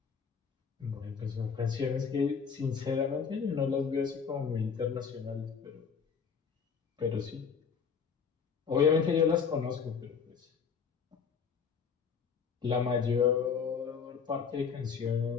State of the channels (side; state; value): right; quieter; 6.4 dB